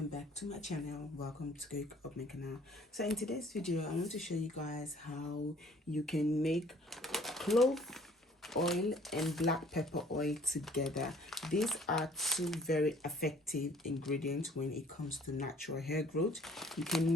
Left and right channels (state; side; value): normal; both; correlation 0.56